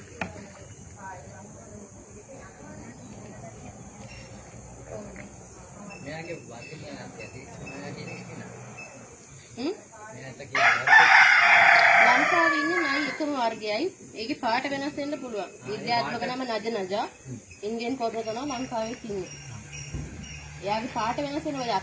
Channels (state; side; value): identical; both; correlation 1.00